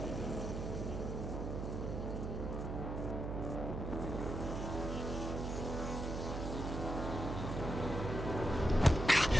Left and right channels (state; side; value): noise; right; hum, 4 dB below the sound